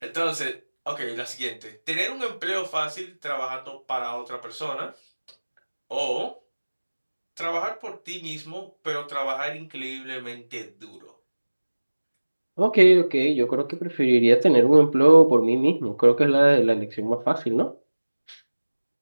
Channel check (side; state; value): both; inverted; correlation -1.00